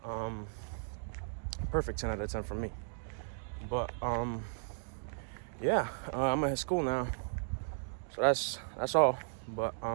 Perfect 10 out of 10 for me. But, yeah, I'm at school now. So that's all. But,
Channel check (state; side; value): silent; left; digital silence